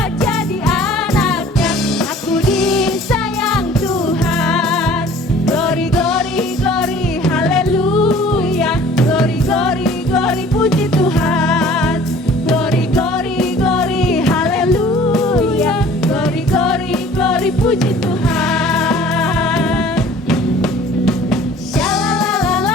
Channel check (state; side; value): normal; both; correlation 0.50